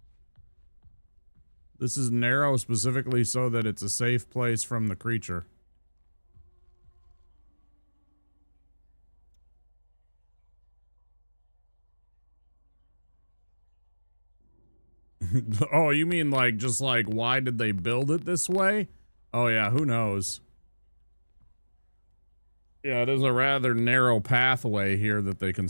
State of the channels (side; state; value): both; inverted; correlation -1.00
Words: This is narrow specifically so that it's a safe place from the creature. Oh, you mean like, just like, why did they build it this way? Oh yeah, who knows? Yeah, it is a rather narrow pathway here that they